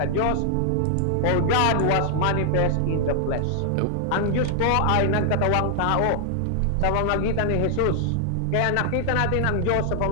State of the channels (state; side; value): different; both; correlation 0.00